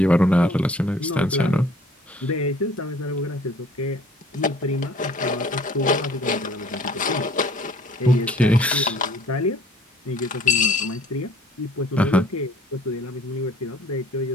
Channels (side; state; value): both; normal; correlation 0.54